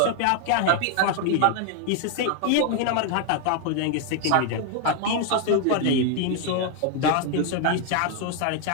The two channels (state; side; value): different; both; correlation 0.00